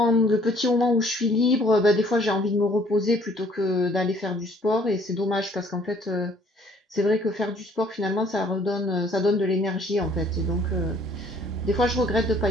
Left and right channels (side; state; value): both; normal; correlation 0.59